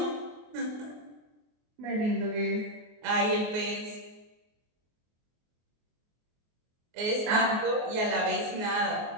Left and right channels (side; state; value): left; late; 24 ms